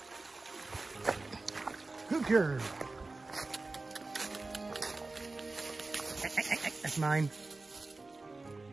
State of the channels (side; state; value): left; quieter; 3.4 dB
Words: Good girl. That's mine.